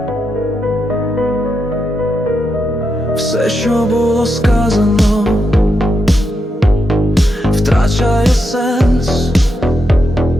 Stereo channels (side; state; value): both; normal; correlation 0.84